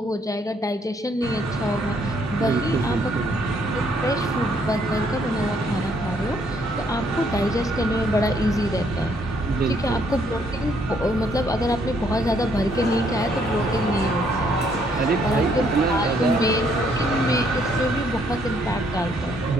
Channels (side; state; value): both; normal; correlation 0.68